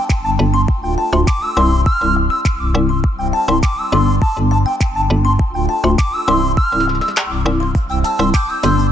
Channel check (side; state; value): both; normal; correlation 0.79